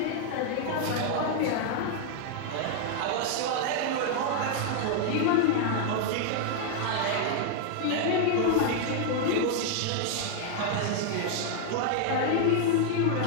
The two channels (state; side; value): different; both; correlation 0.00